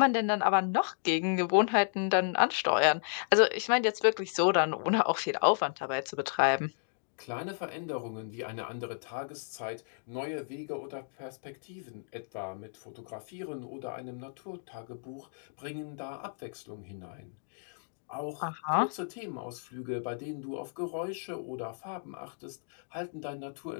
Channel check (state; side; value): silent; right; digital silence